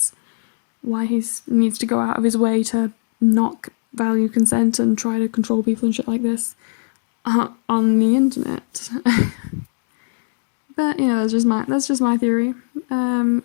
why he needs to go out of his way to not value consent and try to control people and shit like this. on the internet. But that's just my theory.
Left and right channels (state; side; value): silent; right; 66 dB below the other